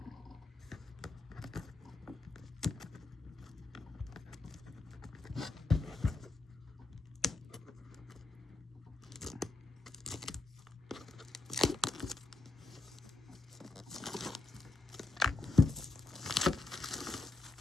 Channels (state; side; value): quieter; right; 3.4 dB